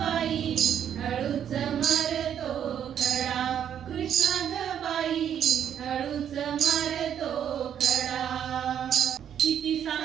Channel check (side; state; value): left; quieter; 9.2 dB